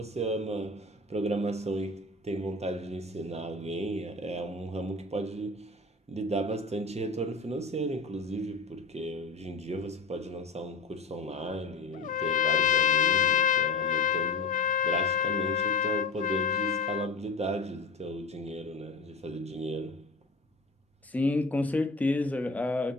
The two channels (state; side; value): quieter; right; 3.8 dB